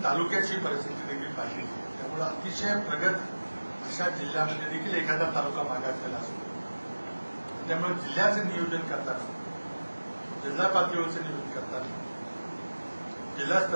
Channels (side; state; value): both; inverted; correlation -1.00